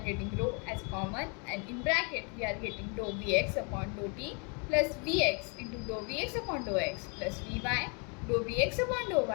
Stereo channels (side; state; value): right; quieter; 35.6 dB